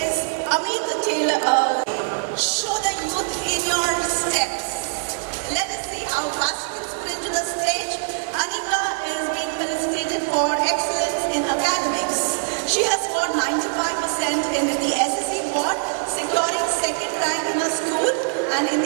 Amit Taylor. Show the youth in your steps. Let us see how fast you can sprint to the stage. Anika is being felicitated for excellence in academics. She has scored 95% in the SSC board, securing second rank in her school, and in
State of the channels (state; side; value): silent; left; digital silence